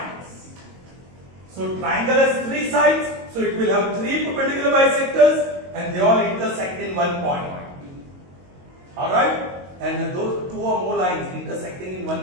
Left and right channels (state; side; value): late; left; 22 ms